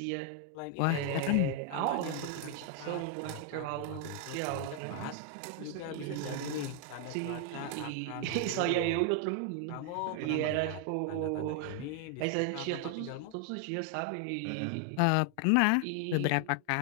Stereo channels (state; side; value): different; both; correlation 0.00